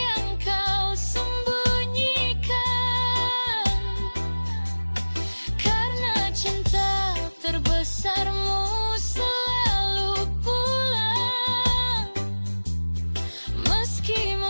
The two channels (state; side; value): inverted; both; correlation -1.00